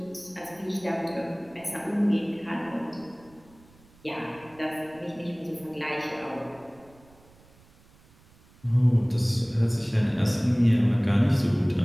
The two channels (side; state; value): right; noise; rumble, 28 dB below the sound